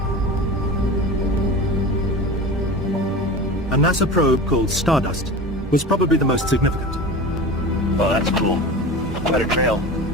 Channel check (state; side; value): normal; both; correlation 0.32